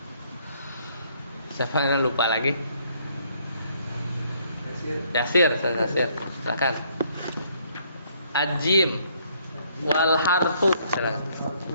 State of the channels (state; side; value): inverted; both; correlation -0.66